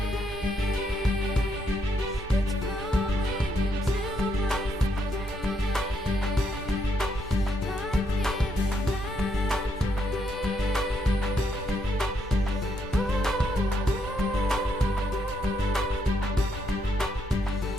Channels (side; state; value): both; normal; correlation 0.76